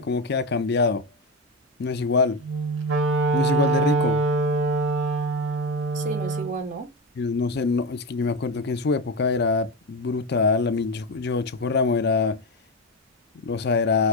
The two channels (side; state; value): both; normal; correlation 0.17